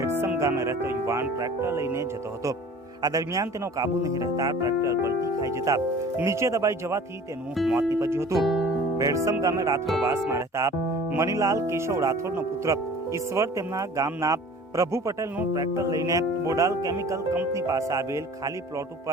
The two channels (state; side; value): normal; both; correlation 0.45